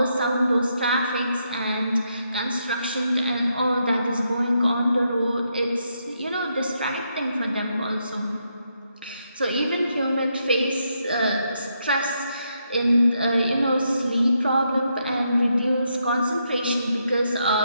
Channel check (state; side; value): inverted; both; correlation -0.79